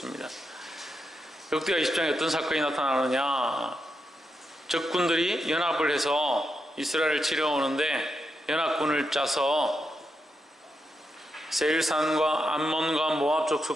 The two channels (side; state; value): both; normal; correlation 0.85